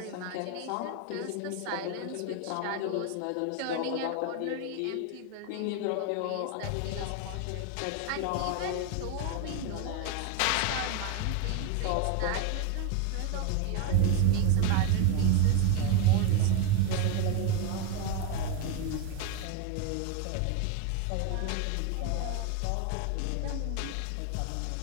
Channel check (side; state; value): both; different; correlation 0.02